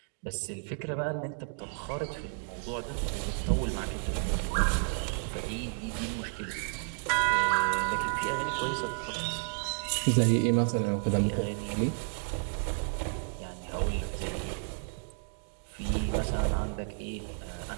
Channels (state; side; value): silent; left; 57 dB below the other